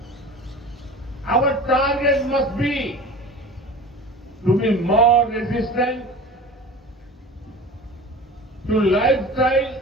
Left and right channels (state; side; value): normal; both; correlation 0.37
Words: Our target must be to be more resistant to lifestyle